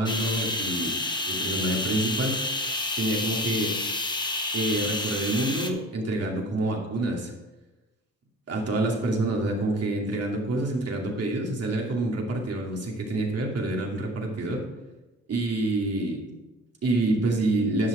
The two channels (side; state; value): both; normal; correlation 0.42